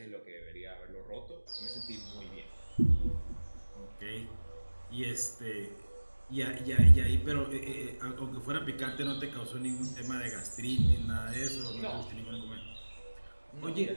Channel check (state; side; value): inverted; both; correlation -1.00